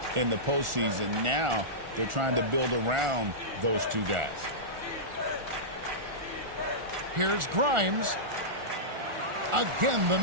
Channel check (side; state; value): left; late; 1.4 ms